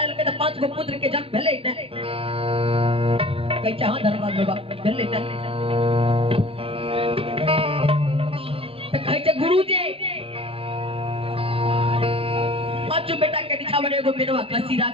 के 5 गो पुत्र के जन्म भेलै ने कहै छै हां धर्मराज बाबा भेलै ने त कहै छै गुरुजी 5 बेटा के दिखावन एगो मेनवा खसी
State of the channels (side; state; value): left; late; 0.27 ms